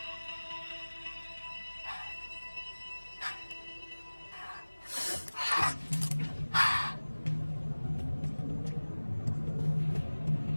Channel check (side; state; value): both; inverted; correlation -1.00